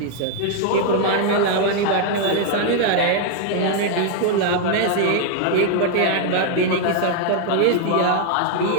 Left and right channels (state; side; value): different; both; correlation 0.00